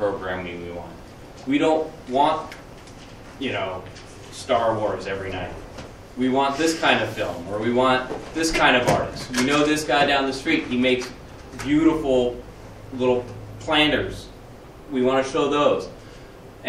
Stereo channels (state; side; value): identical; both; correlation 1.00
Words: we want. We don't want, you know, Star Wars every night. We want this kind of film, or we want this kind of artist. We know this guy down the street, he makes beautiful little planters. We want to show those.